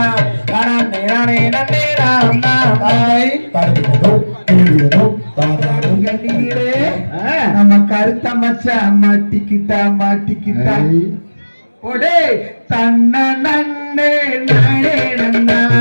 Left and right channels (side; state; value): both; inverted; correlation -1.00